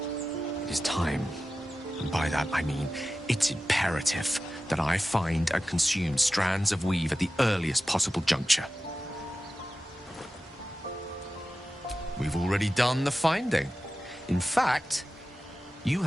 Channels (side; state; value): both; normal; correlation 0.94